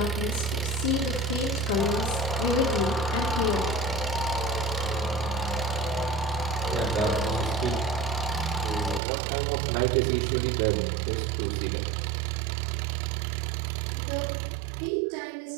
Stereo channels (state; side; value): drops out; left; at 9.0 s